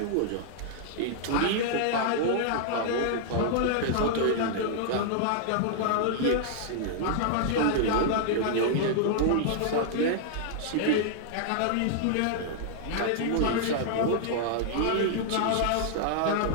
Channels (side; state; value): both; different; correlation -0.01